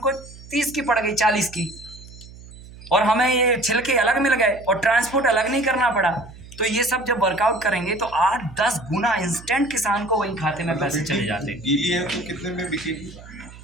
30 की पड़ गई, 40 की, और हमें ये छिलके अलग मिल गए और ट्रांसपोर्ट अलग नहीं करना पड़ा। तो ये सब जब वर्कआउट करेंगे तो 8-10 गुना इंस्टेंट किसान को वही खाते में पैसे चले जाते हैं। गीली है तो कितने में बिकेगी?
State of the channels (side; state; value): right; noise; hum, 18 dB below the sound